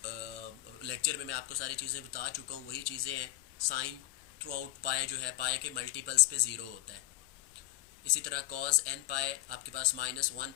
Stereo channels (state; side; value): quieter; right; 16.9 dB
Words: लेक्चर में मैं आपको सारी चीज़ें बता चुका हूँ वही चीज़ें हैं। साइन थ्रू आउट पाए जो है पाए के मल्टीपल्स पे ज़ीरो होता है। इसी तरह कॉज एन पाए आपके पास माइनस वन